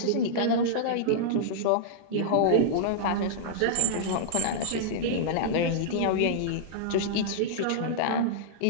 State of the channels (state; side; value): different; both; correlation -0.02